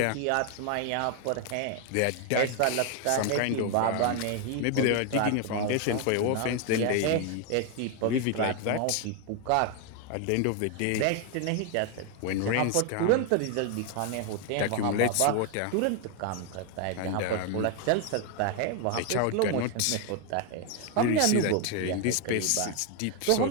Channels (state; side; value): different; both; correlation 0.01